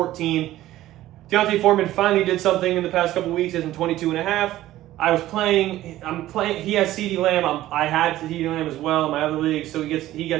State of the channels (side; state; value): left; quieter; 14.8 dB